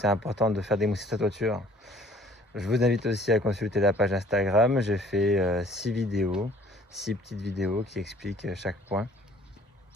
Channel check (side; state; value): both; normal; correlation 0.56